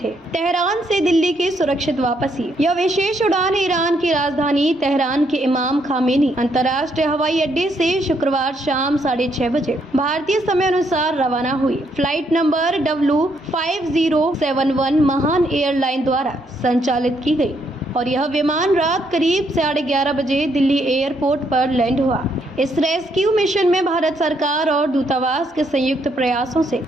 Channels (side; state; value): both; normal; correlation 0.74